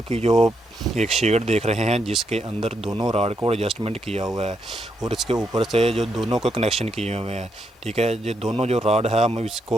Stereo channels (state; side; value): normal; both; correlation 0.79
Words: की जो एक शेड देख रहे हैं जिसके अंदर दोनों राड को एडजस्टमेंट किया हुआ है और इसके ऊपर से जो दोनों को कनेक्शन किए हुए हैं। ठीक है, ये दोनों जो राड है हम